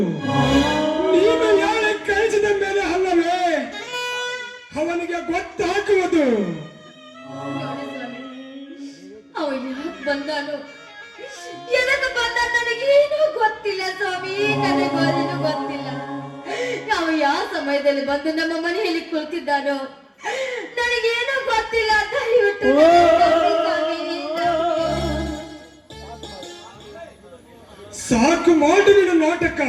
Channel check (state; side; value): identical; both; correlation 1.00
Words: ನೀನು ಯಾಳೆ ಕಳಿಸಿದ ಮೇಲೆ ಅಲ್ಲವೇ ಅವನಿಗೆ ಗೊತ್ತಾಗುವುದು. ಅವ ಯಾಕೆ ಬಂದಾನು, ಎದಕ್ಕೆ ಬಂದ ನನಗೇನು ಗೊತ್ತಿಲ್ಲ ಸ್ವಾಮಿ, ನನಗೇನು ಗೊತ್ತಿಲ್ಲ. ಸಮಯದಲ್ಲಿ ಬಂದು ನಮ್ಮ ಮನೆಯಲ್ಲಿ ಕುಳಿತಿದ್ದಾನೋ ನನಗೇನೋ ಗೊತ್ತಿಲ್ಲ. ದಯವಿಟ್ಟು ನನಗೆ ಸಾಕು ಮಾಡು ನಿನ್ನ ನಾಟಕ.